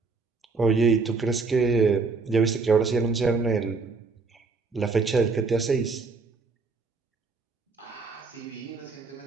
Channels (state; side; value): quieter; left; 4.3 dB